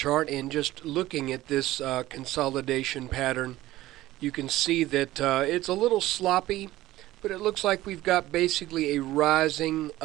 and just looking at this consolidation pattern, you can see that it's a little sloppy, but it looks like we've got basically a rising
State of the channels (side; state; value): left; quieter; 16.1 dB